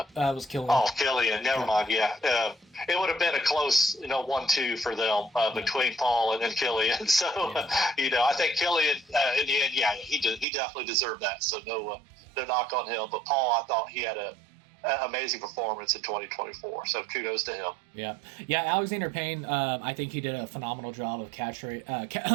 was Killian. Oh, Killian. Never mind. Yeah, it would have been a close, 1-2 for them between Paul and Killian. So, I think Killian in the end, he definitely deserved that. So no knock on him. But Paul, I thought he had a amazing performance in 2024. So kudos to him. Yeah. Alexander Payne, I think he did a phenomenal job of capturing. He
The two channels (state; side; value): drops out; left; at 10.5 s